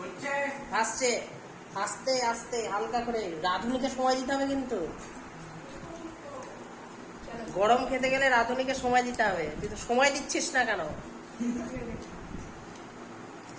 হচ্ছে আসছে। আস্তে আস্তে হালকা করে, রাঁধুনিকে সময় দিতে হবে কিন্তু। গরম খেতে গেলে রাঁধুনিকে সময় দিতে হবে, তুই তো সময় দিচ্ছিস না কেন?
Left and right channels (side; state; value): both; identical; correlation 1.00